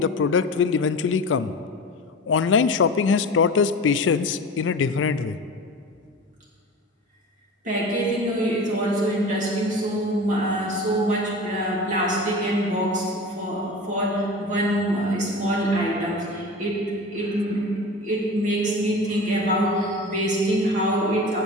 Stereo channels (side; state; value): both; normal; correlation 0.33